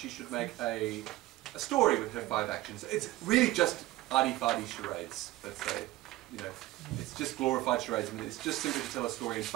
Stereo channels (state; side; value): quieter; left; 17.0 dB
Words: should make a story with her 5 actions. It's really just arty-farty charades, let's say. You know, it's just glorified charades. I mean, it's just simply to tell a story in